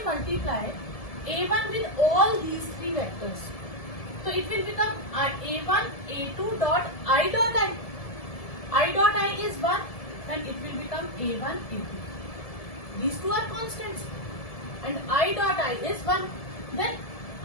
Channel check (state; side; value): late; right; 1.7 ms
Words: multiply A1 with all these three vectors, so it will become A1, A2 dot I dot I. I dot I is 1 and it will become A1, A2. These two are constants and I dot I is 1. Then